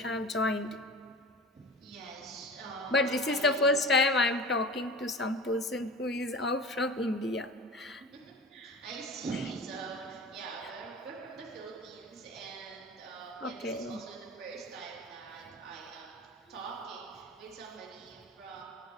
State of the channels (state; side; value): normal; both; correlation 0.36